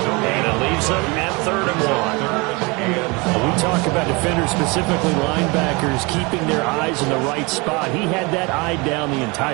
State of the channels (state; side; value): quieter; left; 27.1 dB